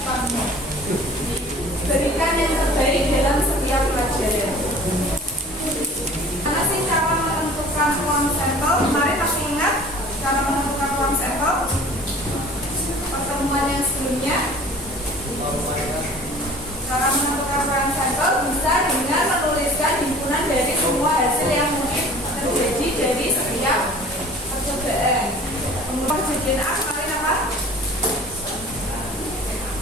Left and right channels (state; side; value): normal; both; correlation 0.46